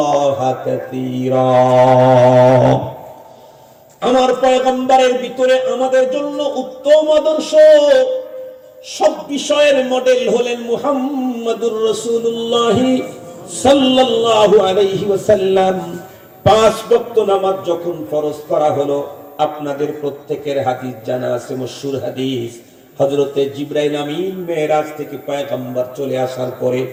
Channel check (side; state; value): both; identical; correlation 1.00